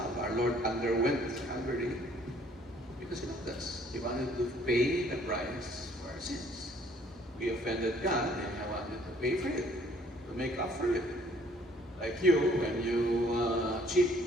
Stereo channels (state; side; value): normal; both; correlation 0.60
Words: Our Lord underwent Calvary because he loved us. He wanted to pay the price for our sins. We offended God, and he wanted to pay for it, to make up for it. Like you, when you cheat